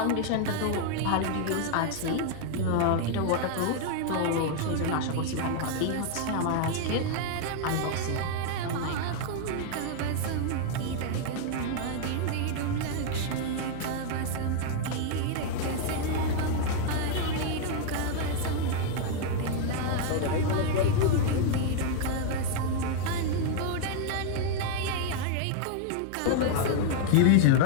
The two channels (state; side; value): different; both; correlation 0.00